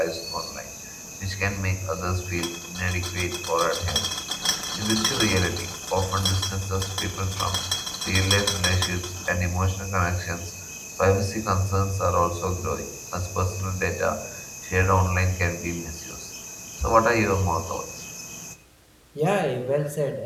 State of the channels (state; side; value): identical; both; correlation 1.00